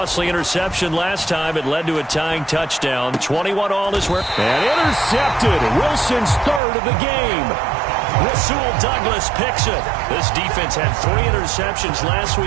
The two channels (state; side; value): drops out; left; at 6.6 s